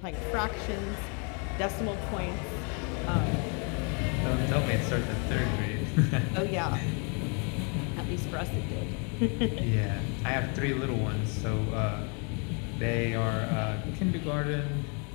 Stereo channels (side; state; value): right; quieter; 36.8 dB